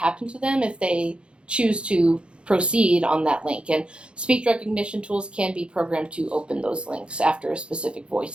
to them if they choose to proceed on that link. And speech recognition tools can be programmed to open those links after a specific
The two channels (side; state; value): left; late; 0.056 ms